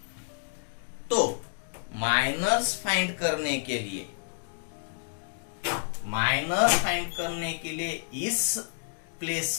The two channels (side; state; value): right; silent; digital silence